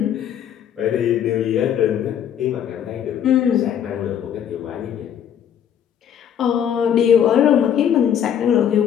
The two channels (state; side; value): quieter; right; 9.2 dB